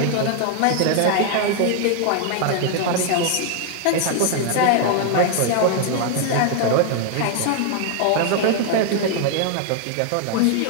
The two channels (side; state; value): both; different; correlation 0.00